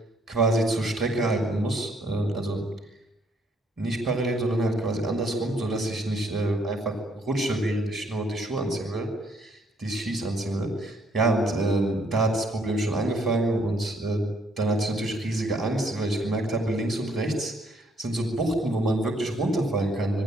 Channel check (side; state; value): both; normal; correlation 0.67